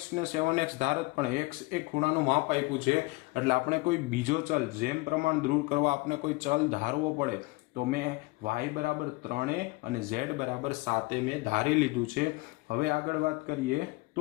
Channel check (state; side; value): quieter; right; 24.3 dB